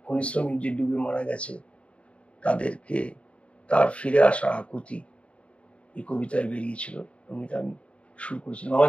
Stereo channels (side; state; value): right; late; 0.062 ms